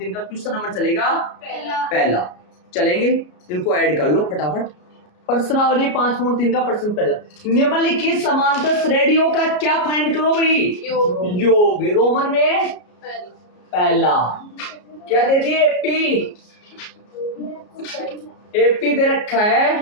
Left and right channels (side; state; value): right; late; 33 ms